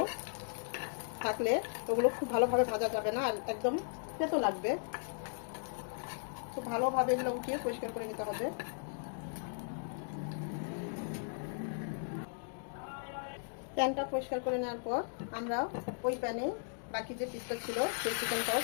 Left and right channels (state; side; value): silent; right; digital silence